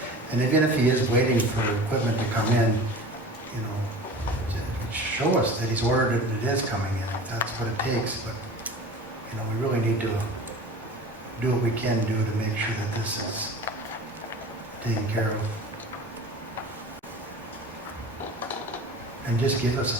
and even if he is waiting for equipment to come in, show us that he's ordered it and it is coming in, if that's what it takes, but, we really need to do what we can do to make sure that this is taken care of. And just give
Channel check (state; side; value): normal; both; correlation 0.37